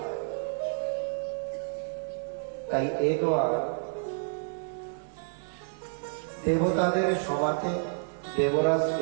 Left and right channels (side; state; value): left; silent; digital silence